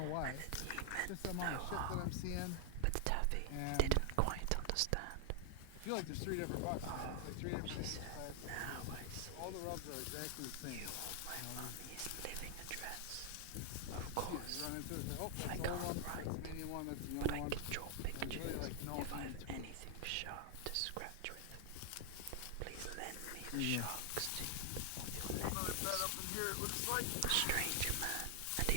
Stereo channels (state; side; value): different; both; correlation 0.00